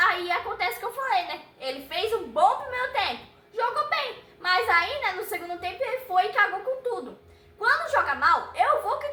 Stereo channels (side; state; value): both; identical; correlation 1.00